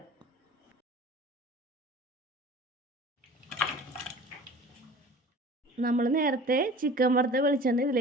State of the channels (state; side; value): normal; both; correlation 0.42